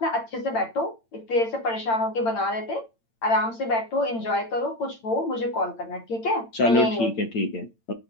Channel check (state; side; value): late; right; 8.8 ms